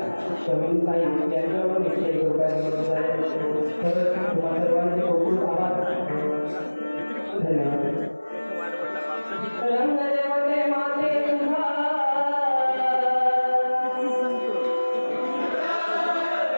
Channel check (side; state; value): both; inverted; correlation -1.00